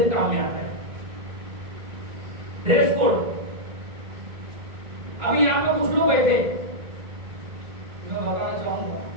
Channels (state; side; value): late; left; 2.1 ms